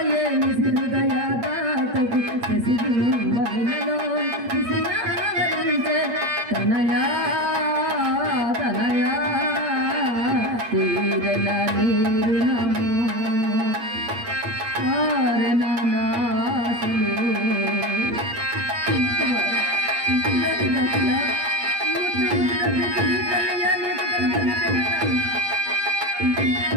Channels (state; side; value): late; left; 8.7 ms